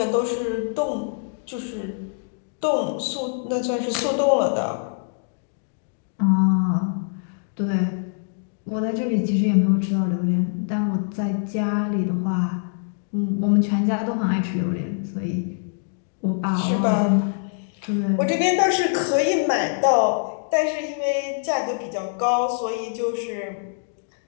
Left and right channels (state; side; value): silent; right; digital silence